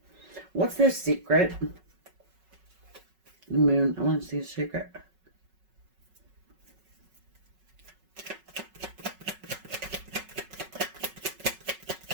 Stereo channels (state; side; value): late; left; 5.3 ms